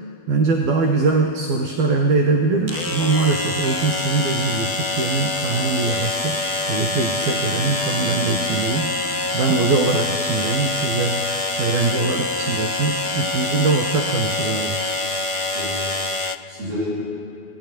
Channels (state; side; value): late; left; 12 ms